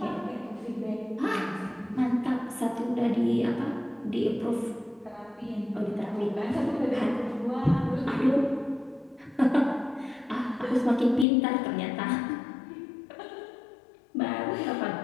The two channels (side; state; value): right; drops out; at 11.2 s